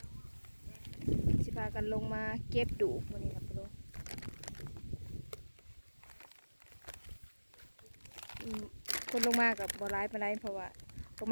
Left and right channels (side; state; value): both; inverted; correlation -1.00